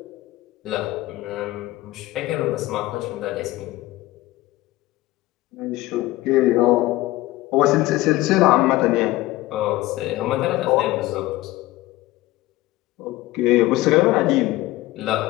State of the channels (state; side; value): quieter; right; 17.8 dB